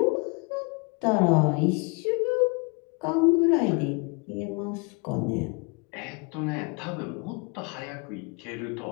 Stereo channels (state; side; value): quieter; right; 29.8 dB